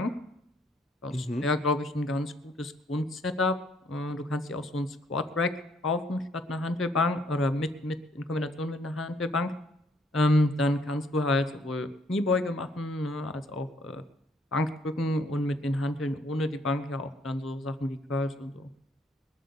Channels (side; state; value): both; normal; correlation 0.67